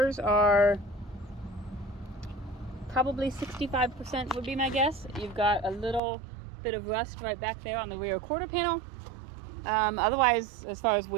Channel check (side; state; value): left; drops out; at 6.0 s